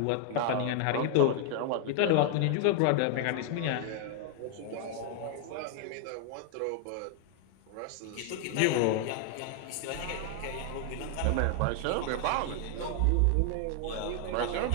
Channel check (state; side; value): different; both; correlation 0.00